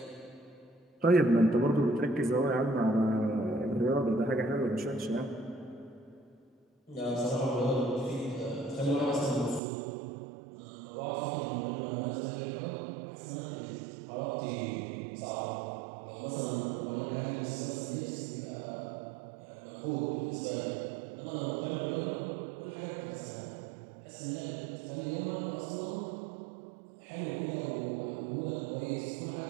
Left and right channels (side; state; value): left; drops out; at 9.6 s